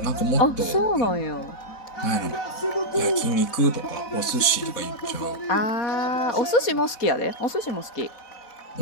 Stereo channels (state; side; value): late; right; 4.1 ms